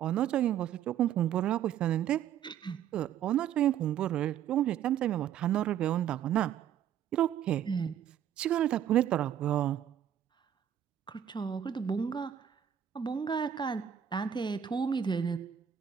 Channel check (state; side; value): quieter; left; 9.7 dB